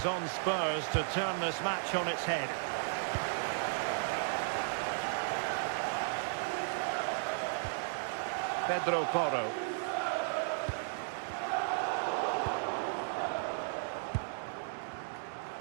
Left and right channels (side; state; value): left; silent; 54 dB below the other